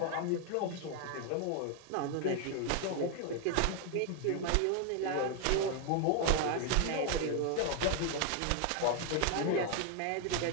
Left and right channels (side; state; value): both; different; correlation 0.01